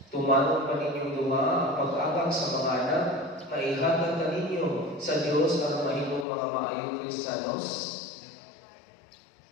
Tumanong pa ninyong duha ang pag-agak sa mga anak, maihatag na ninyo sa Diyos ang mahimong mga maayong Kristiyanos.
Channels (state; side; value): drops out; right; at 6.2 s